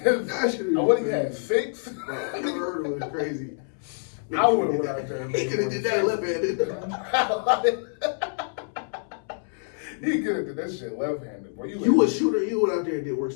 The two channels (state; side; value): silent; right; 61 dB below the other